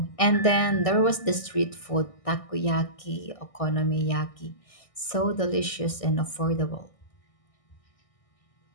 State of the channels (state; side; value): late; right; 1.6 ms